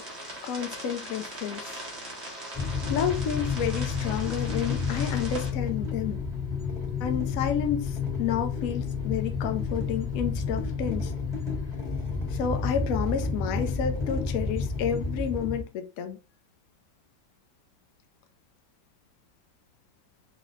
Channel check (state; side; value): quieter; right; 5.8 dB